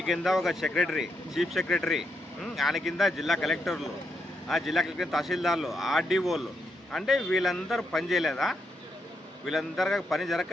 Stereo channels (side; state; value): both; normal; correlation 0.81